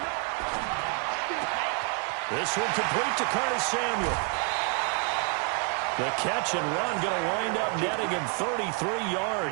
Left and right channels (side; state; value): left; quieter; 35.4 dB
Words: This one complete to Curtis Samuel. The catch and run going to wind up netting him 33